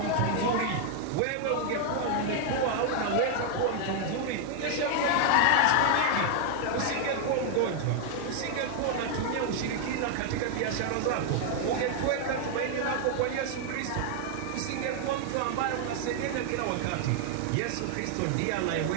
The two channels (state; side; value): different; both; correlation 0.00